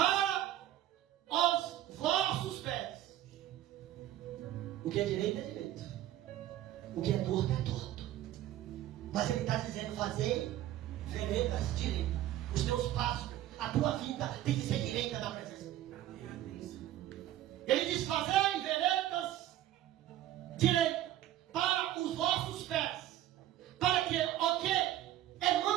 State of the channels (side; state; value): left; quieter; 13.3 dB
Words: os vossos pés. O que é direito é direito. O que é torto é torto. Mas ele está dizendo: fazer veredas direitas. Os teus passos, a tua vida tem que ser direita na presença de Deus. Ele diz: fazei veredas direitas para os vossos pés, para que o que é